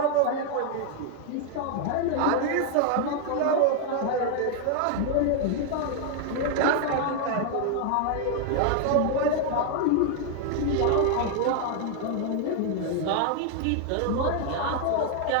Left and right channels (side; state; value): both; different; correlation 0.00